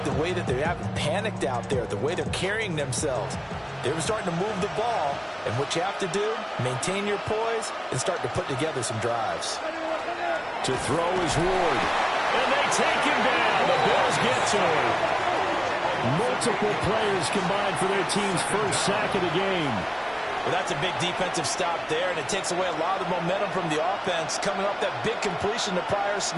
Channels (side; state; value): both; identical; correlation 1.00